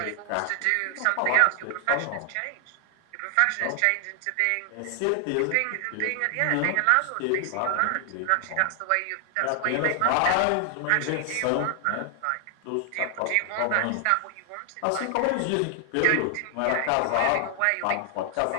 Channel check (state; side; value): different; both; correlation 0.00